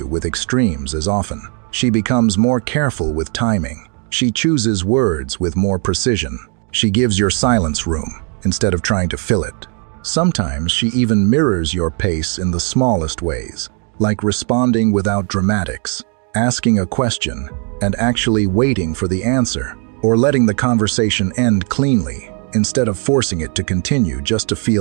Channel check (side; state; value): left; quieter; 39.7 dB